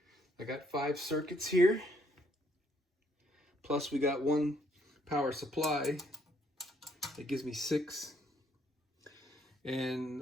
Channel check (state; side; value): normal; both; correlation 0.69